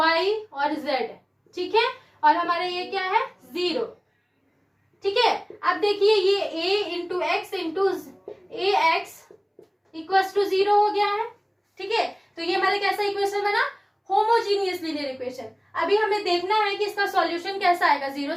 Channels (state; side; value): identical; both; correlation 1.00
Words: और z। ठीक है, और हमारा ये क्या है, 0। ठीक है, अब देखिए ये a into x into a x equals to 0 हो गया है। ठीक है, तो ये हमारा कैसा इक्वेशन बना, होमोजीनियस लीनियर इक्वेशन। अभी हमें देखना है कि इसका सॉल्यूशन कैसा आएगा, 0